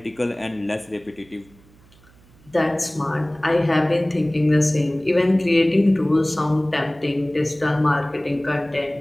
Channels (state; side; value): noise; right; hum, 28 dB below the sound